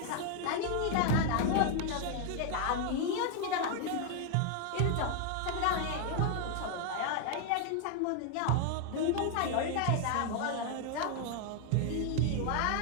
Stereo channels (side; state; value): both; different; correlation 0.00